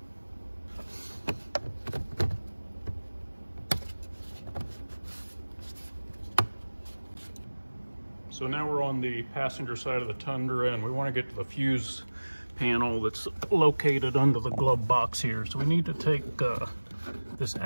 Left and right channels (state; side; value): inverted; both; correlation -1.00